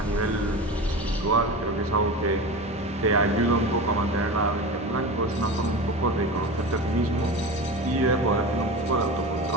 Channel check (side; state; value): both; normal; correlation 0.28